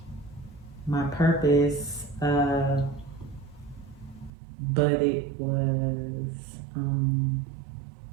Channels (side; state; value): left; drops out; at 4.3 s